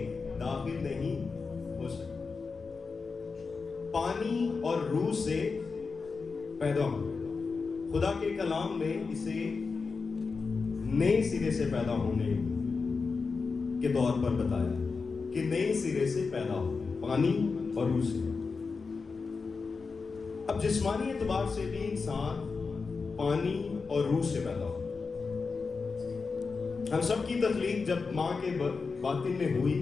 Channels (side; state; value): right; quieter; 4.7 dB